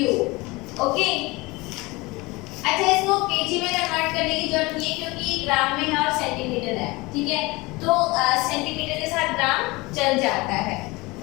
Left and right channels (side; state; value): right; quieter; 23.2 dB